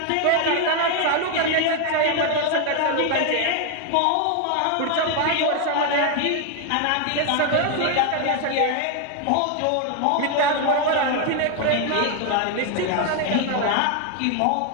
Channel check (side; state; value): both; different; correlation 0.01